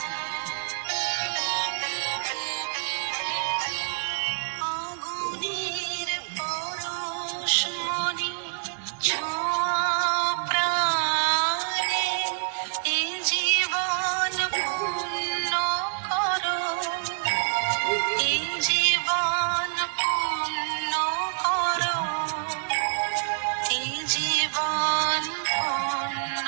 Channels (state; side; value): silent; left; digital silence